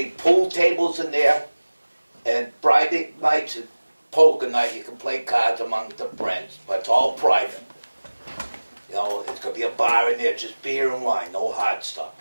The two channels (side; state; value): both; inverted; correlation -1.00